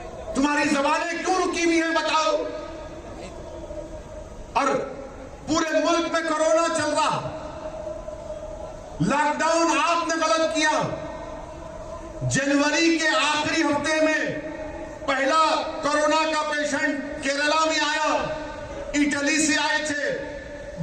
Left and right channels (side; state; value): both; identical; correlation 1.00